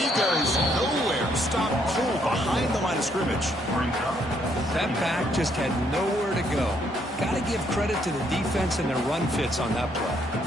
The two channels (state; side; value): normal; both; correlation 0.71